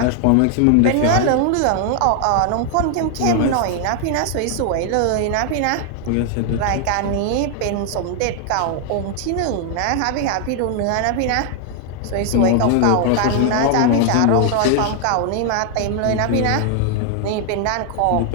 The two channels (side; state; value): both; different; correlation 0.00